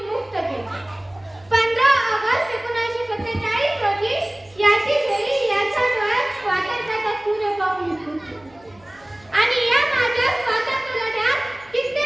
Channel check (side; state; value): right; noise; hum, 29 dB below the sound